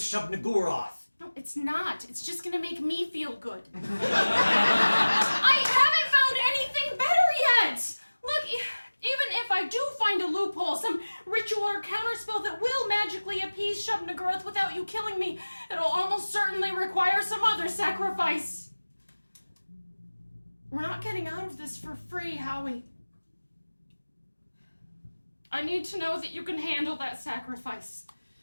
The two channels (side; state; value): both; inverted; correlation -1.00